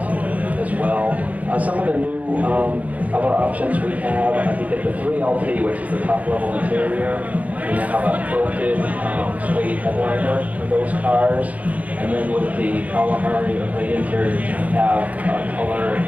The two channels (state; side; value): late; left; 0.072 ms